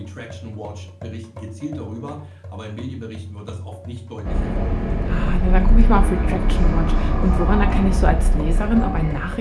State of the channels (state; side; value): identical; both; correlation 1.00